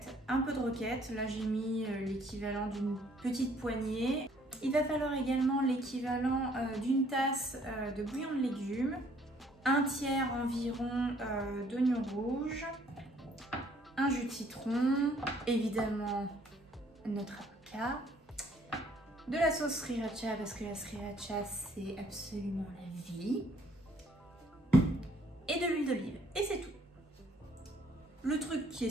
un peu de roquette. Là j'ai mis l'équivalent d'une petite poignée. Il va falloir également l'équivalent d'une tasse de bouillon de légumes, un tiers environ d'oignons rouges, un jus de citron, évidemment notre avocat, de la sauce sriracha parce que la sriracha c'est absolument la vie, et de l'huile d'olive, et c'est tout. Le truc qui est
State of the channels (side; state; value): both; normal; correlation 0.62